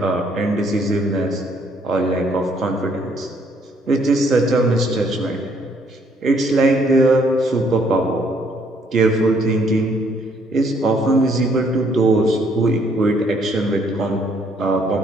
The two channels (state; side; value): normal; both; correlation 0.67